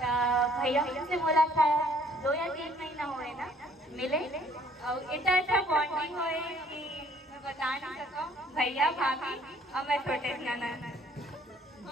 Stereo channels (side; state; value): both; normal; correlation 0.60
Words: भैया से मुलाकात 2 या 3 महीना हुए ना मिले और इतना अच्छा बॉन्डिंग हुए कि मैं बता नहीं सकूं। भैया भाभी और मैं छोटे नाना